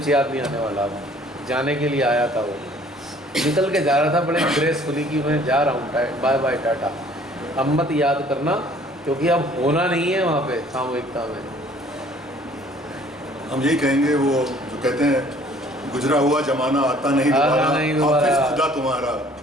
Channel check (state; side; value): normal; both; correlation 0.55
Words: याद नहीं आने वाला। अब जाने के लिए आया था, वो निकल के जा रहा था बड़े ग्रेसफुली कि मैं जा रहा हूँ, बाय बाय टाटा। अब मत याद करना, क्योंकि अब होना नहीं है वहाँ पे सामूहिकता में। हम यही कहेंगे, वो जो कहते हैं गुजरा हुआ जमाना आता नहीं दोबारा, हाफिज खुदा तुम्हारा।